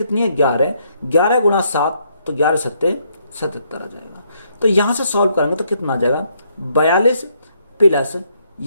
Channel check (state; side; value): inverted; both; correlation -0.72